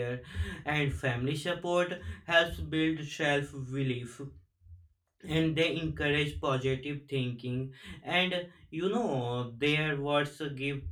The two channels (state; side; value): identical; both; correlation 1.00